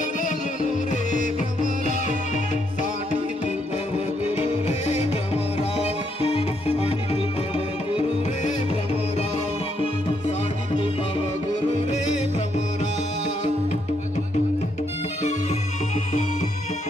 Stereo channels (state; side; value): normal; both; correlation 0.75